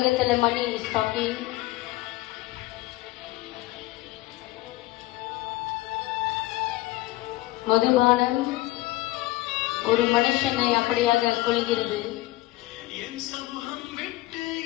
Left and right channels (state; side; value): quieter; right; 18.4 dB